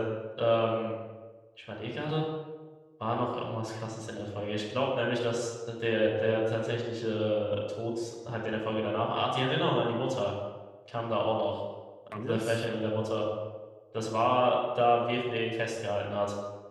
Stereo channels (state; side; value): identical; both; correlation 1.00